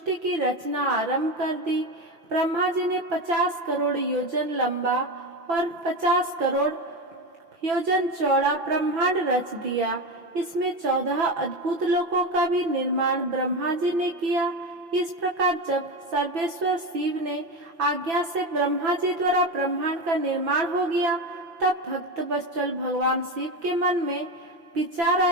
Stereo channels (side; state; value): left; late; 5.9 ms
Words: की रचना आरंभ कर दी। ब्रह्मा जी ने 50 करोड़ योजन लंबा और 50 करोड़ योजन चौड़ा ब्रह्मांड रच दिया। इसमें 14 अद्भुत लोकों का भी निर्माण ब्रह्मा जी ने किया। इस प्रकार जब सर्वेश्वर शिव ने आज्ञा से ब्रह्मा जी द्वारा ब्रह्मांड का निर्माण हो गया, तब भक्त वत्सल भगवान शिव के मन में विचार